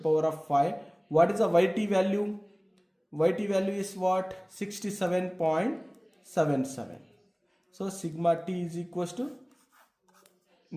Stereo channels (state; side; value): identical; both; correlation 1.00